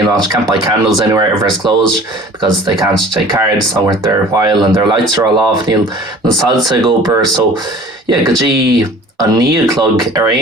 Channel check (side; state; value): both; normal; correlation 0.46